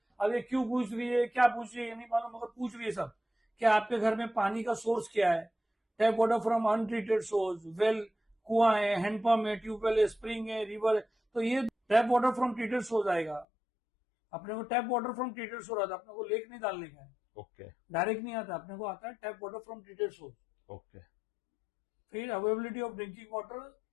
अब ये क्यों पूछ रही है, क्या पूछ रही है, ये नहीं मालूम, मगर पूछ रही है सब। क्या आपके घर में पानी का सोर्स क्या है? Tap water from untreated source, well, कुआं है, हैंडपंप है, ट्यूबवेल है, स्प्रिंग है, रिवर है। तो ये tap water from treated source आएगा। अपने को tap water from treated source आता है, अपने को लेक नहीं डालने का है। ओके। डायरेक्ट नहीं आता, अपने को आता है tap water from treated source. Okay. फिर अवेलेबिलिटी ऑफ ड्रिंकिंग वाटर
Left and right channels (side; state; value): right; drops out; at 13.5 s